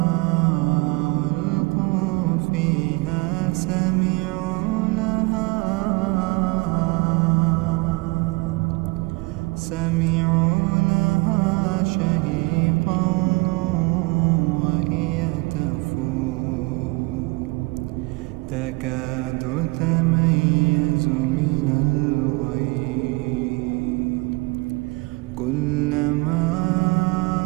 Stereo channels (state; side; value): quieter; left; 25.9 dB